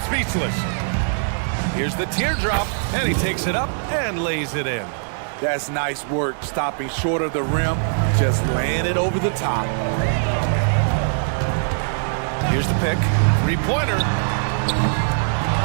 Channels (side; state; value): left; silent; 65 dB below the other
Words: speechless. Here's the teardrop, and he takes it up and lays it in. That's nice work, stopping short of the rim, just laying it over the top. Here's the pick. Three-pointer.